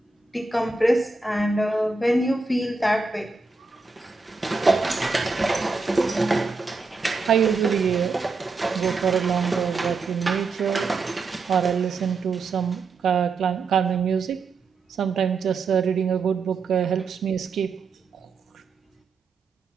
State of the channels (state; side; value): quieter; left; 4.1 dB